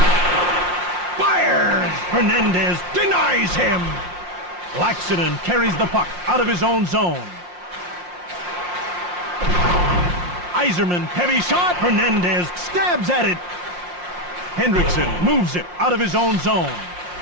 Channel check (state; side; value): late; left; 5.6 ms